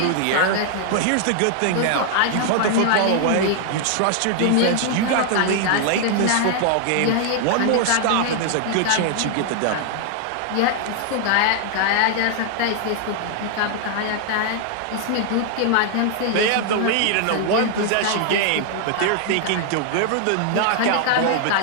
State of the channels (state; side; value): different; both; correlation 0.00